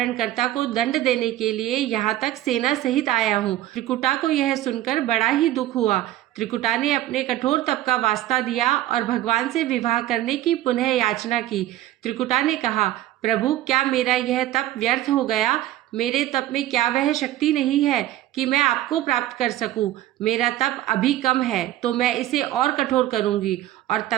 को दंड देने के लिए यहाँ तक सेना सहित आया हूँ। त्रिकुटा को यह सुनकर बड़ा ही दुख हुआ। त्रिकुटा ने अपने कठोर तप का वास्ता दिया और भगवान से विवाह करने की पुनः याचना की। त्रिकुटा ने कहा, प्रभु, क्या मेरा यह तप व्यर्थ हो गया? मेरे तप में क्या वह शक्ति नहीं है कि मैं आपको प्राप्त कर सकूं? मेरा तप अभी कम है, तो मैं इसे और कठोर करूंगी और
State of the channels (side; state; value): left; quieter; 14.2 dB